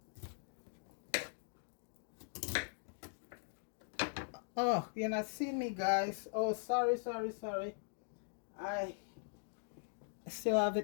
oh, you're not seeing me, guys. Oh, sorry. I still have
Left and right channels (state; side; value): silent; right; digital silence